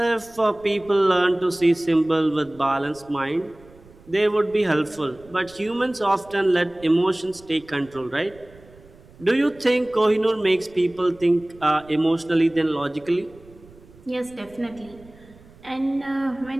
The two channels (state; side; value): noise; right; rumble, 24 dB below the sound